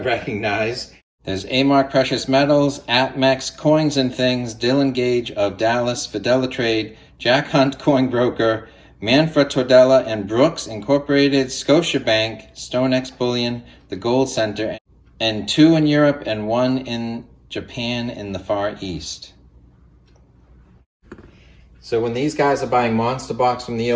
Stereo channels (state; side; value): identical; both; correlation 1.00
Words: recognize. There's A-Mark Precious Metals, APMEX, Coins and Things, Dylan Gage of Dallas, Fidelitrade, Jack Hunt Coin Broker, Manfred Tordella and Brooks Incorporated, Scotiabank, StoneX Bullion, the Gold Center, and 2 in Europe and 1 in Japan in the Far East. So when these guys are buying monster box from the